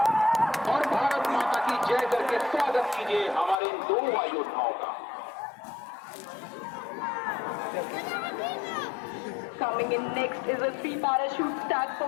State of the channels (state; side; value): drops out; right; at 3.6 s